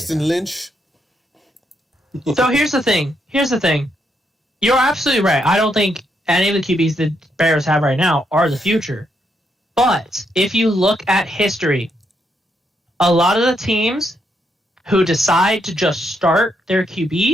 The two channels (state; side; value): normal; both; correlation 0.78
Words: Lynch. So here's the thing. You're absolutely right. I don't think any of the QBs the Bears have right now are the future. But if you look at history, a lot of the teams who decide to just start their